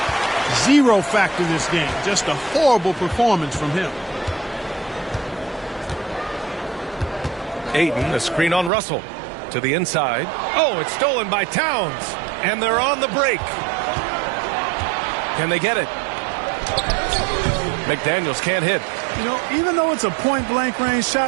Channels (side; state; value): left; drops out; at 8.7 s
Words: Zero factor this game. Just a horrible performance from him. Ayton, a screen on Russell. To the inside. Oh, it's stolen by Towns. And they're on the break. Can they get it? McDaniels can't hit. You know, even though it's a point-blank range